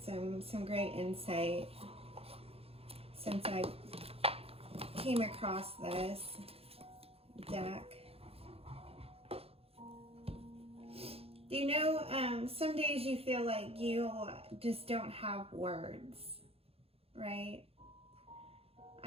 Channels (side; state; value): left; late; 0.28 ms